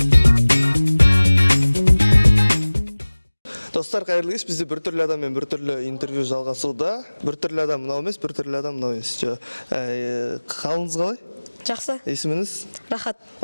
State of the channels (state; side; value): inverted; both; correlation -1.00